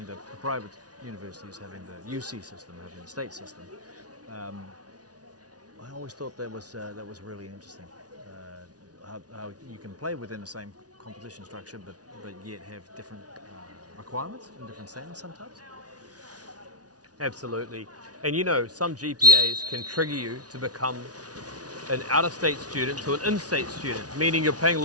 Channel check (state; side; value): late; left; 0.68 ms